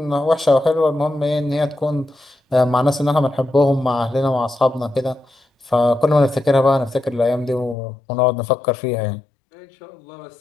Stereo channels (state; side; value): drops out; right; at 7.8 s